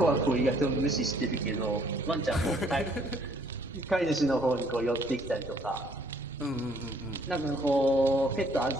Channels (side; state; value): both; normal; correlation 0.63